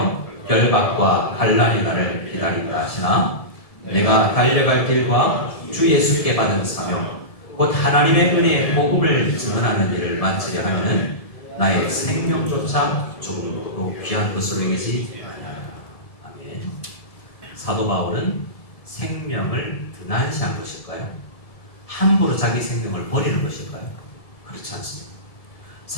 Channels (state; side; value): late; right; 1.7 ms